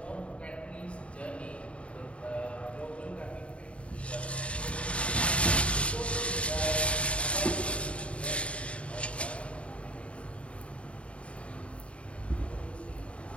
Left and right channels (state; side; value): late; right; 0.061 ms